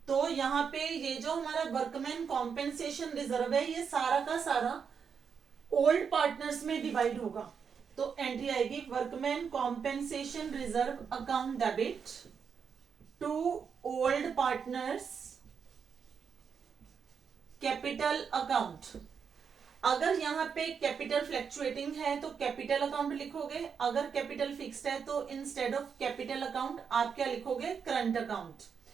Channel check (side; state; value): left; quieter; 6.5 dB